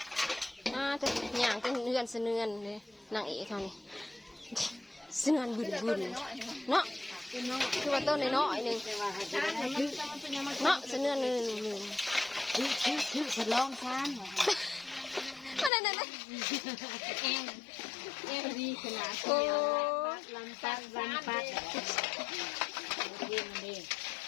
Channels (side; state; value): right; drops out; at 15.7 s